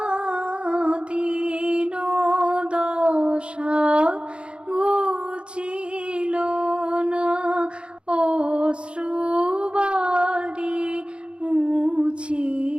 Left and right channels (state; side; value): late; left; 0.056 ms